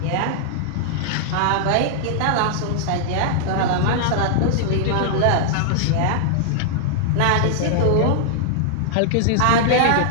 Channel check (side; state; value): both; different; correlation -0.01